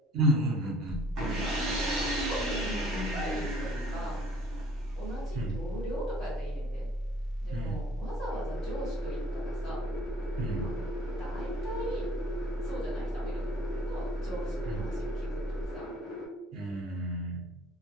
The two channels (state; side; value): normal; both; correlation 0.57